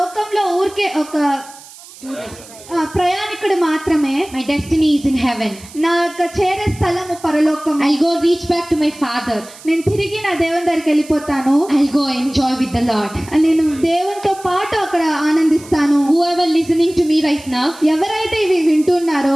ఊరికే ఒక ప్రయాణికుడు మాత్రమే. My destiny is in heaven. నా యొక్క చేరే స్థలము పరలోకం. I'll go reach back to my Father. నేను తిరిగి నా దేవుని దగ్గరికి వెళ్ళిపోతాను. I'll go enjoy with the Lord. నేను దేవునితో పాటు అక్కడ ఆనందిస్తాను. Whoever listening to me right now, ఎవరైతే ఇవి వింటున్నారో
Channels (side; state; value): right; noise; hiss, 19 dB below the sound